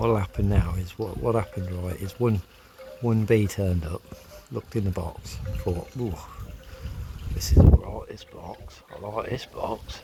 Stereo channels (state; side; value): identical; both; correlation 1.00